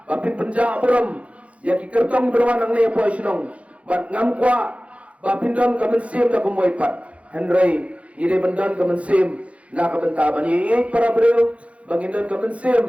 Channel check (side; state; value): left; late; 0.063 ms